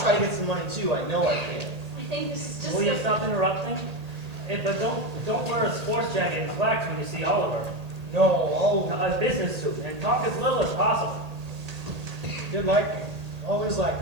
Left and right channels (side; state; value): left; late; 1.8 ms